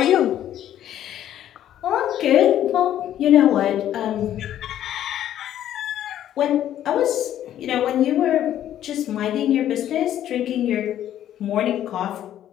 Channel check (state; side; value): quieter; right; 11.5 dB